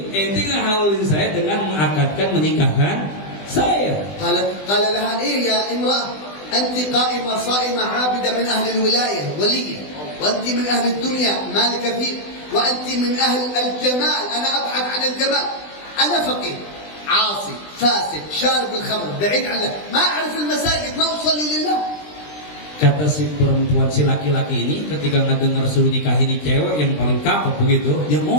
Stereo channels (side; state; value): right; late; 20 ms